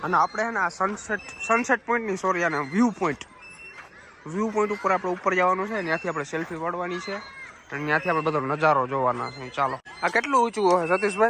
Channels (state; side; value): identical; both; correlation 1.00